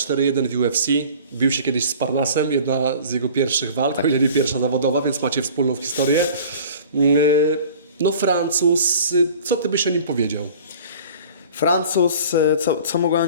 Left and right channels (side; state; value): both; inverted; correlation -0.45